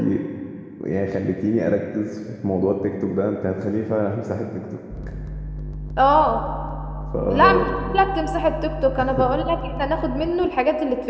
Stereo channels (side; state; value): both; identical; correlation 1.00